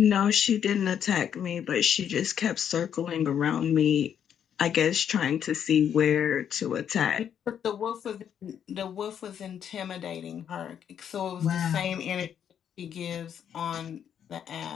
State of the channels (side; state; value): right; quieter; 8.8 dB